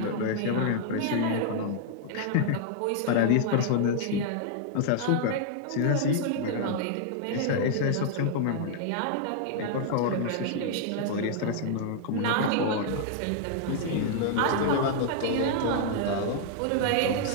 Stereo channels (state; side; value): different; both; correlation -0.01